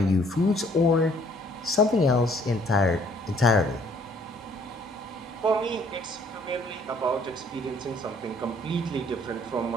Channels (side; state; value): both; normal; correlation 0.61